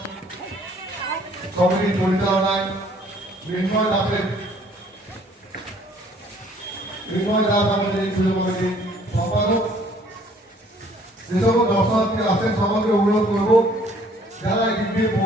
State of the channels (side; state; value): both; normal; correlation 0.59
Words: কমিটির পরিচালনায় মৃন্ময় দাস আমাদের এই পুজো কমিটির সম্পাদক। যে সকল দর্শনার্থী আসেন সবাইকে অনুরোধ করবো, যারা এই দিক দিয়ে